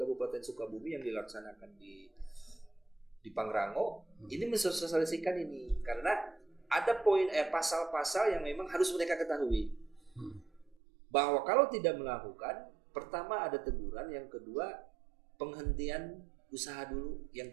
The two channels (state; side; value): drops out; left; at 10.8 s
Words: Sukabumi yang dilaksanakan di Pangrango, ini mensosialisasikan ini karena ada pasal-pasal yang memang harus mereka ketahui. Bahwa kalau tidak melakukan, pertama ada teguran, yang kedua penghentian usaha dulu, yang